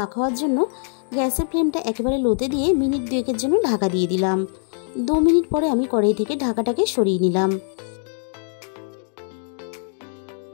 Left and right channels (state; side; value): silent; right; 64 dB below the other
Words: হওয়ার জন্য গ্যাসের ফ্লেমটা একেবারে লোতে দিয়ে মিনিট 2 জন্য ঢাকা দিয়ে দিলাম। 2 মিনিট পরে আমি কড়াই থেকে ঢাকাটাকে সরিয়ে নিলাম।